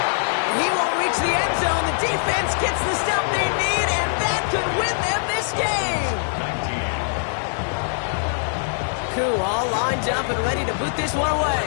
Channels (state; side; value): silent; right; 63 dB below the other